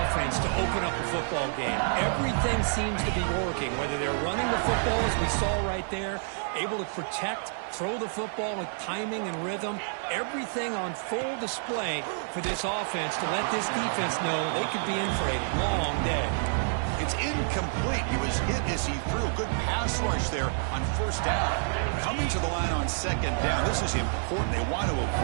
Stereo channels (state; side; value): silent; left; 59 dB below the other